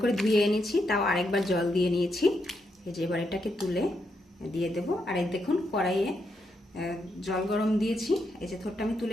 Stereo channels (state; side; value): normal; both; correlation 0.81